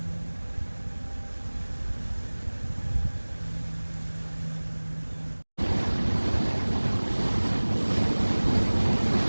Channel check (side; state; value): both; inverted; correlation -1.00